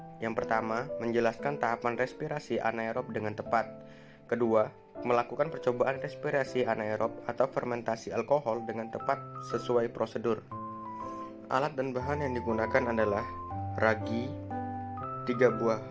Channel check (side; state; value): both; identical; correlation 1.00